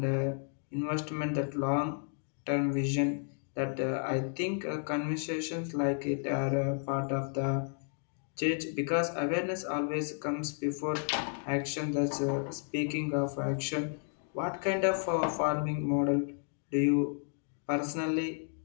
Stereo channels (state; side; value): silent; right; 56 dB below the other